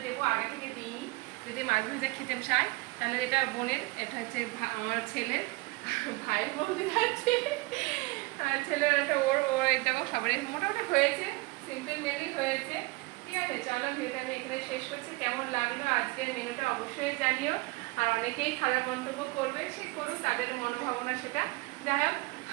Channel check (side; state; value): left; quieter; 23.9 dB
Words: দেবো, আগে থেকে দিইনি। যদি মাছ ভাজা খেতে চায় তাহলে এটা বোনের, এটা হচ্ছে আমার ছেলের, ভাই বলতে যাচ্ছে, আর ছেলের একটা ওর ওর এই দেখো সবারই মোটামুটি হয়েছে, সিম্পল মেনলি হয়েছে। ঠিক আছে চলো ভিডিওটা আমি এখানে শেষ করছি। কেমন লাগলো আজকের মেনুটা অবশ্যই জানিও, আর অনেকেই খারাপ মন্তব্য করবে, সে করুক, তাদের মনোভাবনা সেটা। যাই হোক